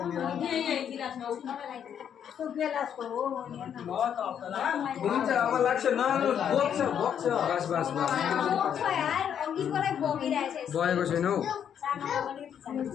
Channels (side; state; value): right; quieter; 8.7 dB